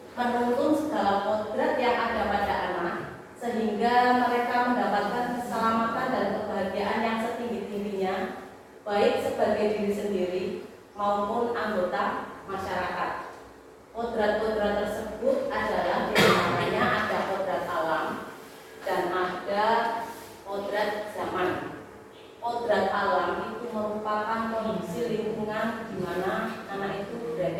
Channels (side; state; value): both; identical; correlation 1.00